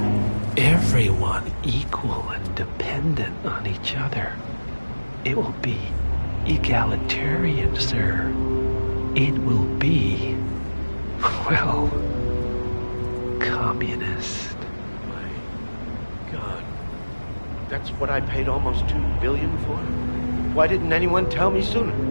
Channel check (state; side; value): inverted; both; correlation -1.00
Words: Everyone equal and dependent on each other. It will be egalitarian, sir. It will be, well, communist. My God. That's what I paid almost $2 billion for? Why didn't anyone tell me sooner?